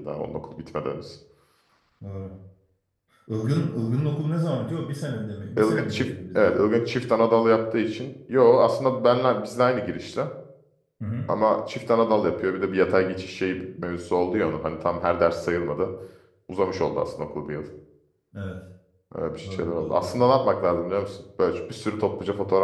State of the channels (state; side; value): identical; both; correlation 1.00